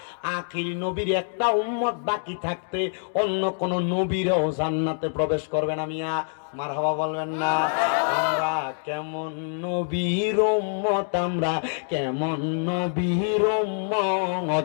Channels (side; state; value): right; silent; digital silence